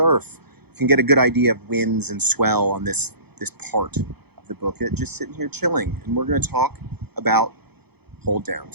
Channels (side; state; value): left; late; 0.97 ms